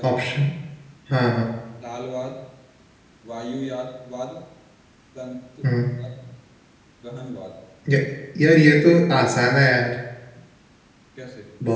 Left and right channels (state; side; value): identical; both; correlation 1.00